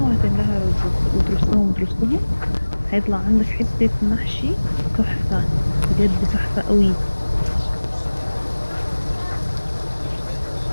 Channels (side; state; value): both; inverted; correlation -1.00